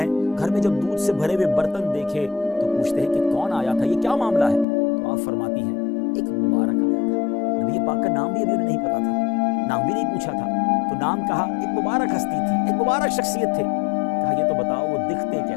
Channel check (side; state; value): right; drops out; at 4.7 s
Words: گھر میں جب دودھ سے بھرے ہوئے برتن دیکھے تو پوچھتے ہیں کہ کون آیا تھا، یہ کیا معاملہ ہے؟ تو آپ فرماتی ہیں ایک مبارک آیا تھا، نبی پاک کا نام بھی ابھی انہیں نہیں پتا تھا، نام بھی نہیں پوچھا تھا، تو نام کہا، ایک مبارک ہستی تھی، ایک مبارک شخصیت تھے۔ کہا یہ تو بتاؤ وہ دکھتے